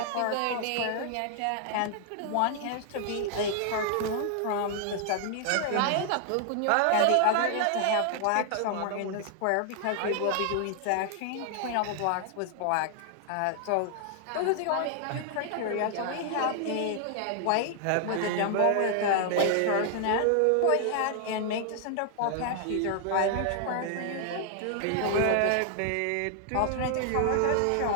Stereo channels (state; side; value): different; both; correlation 0.00